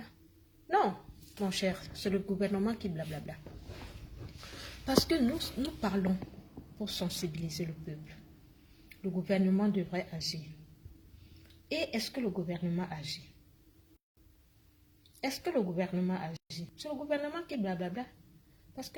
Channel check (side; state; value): both; identical; correlation 1.00